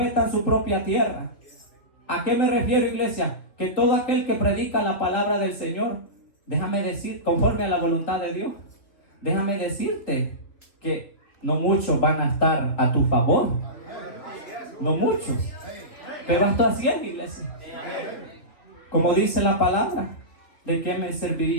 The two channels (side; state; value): right; late; 3.0 ms